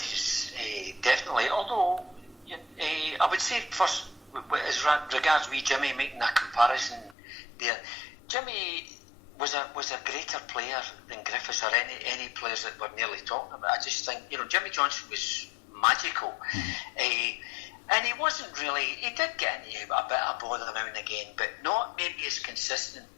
definitely. Although I would say first as regards wee Jimmy making a comparison there, Jimmy was a greater player than Griffiths or any players that we're nearly talking about. I just think, Jimmy Johnson was magical. And he wasn't really, he did get into a bit of bother now and again, but not maybe as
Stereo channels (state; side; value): drops out; right; at 7.2 s